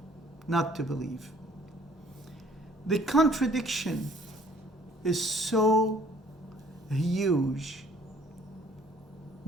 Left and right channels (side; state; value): both; normal; correlation 0.59